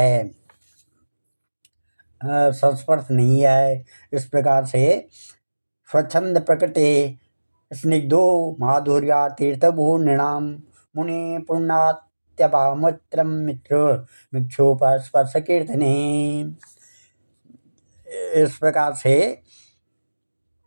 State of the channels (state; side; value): inverted; both; correlation -1.00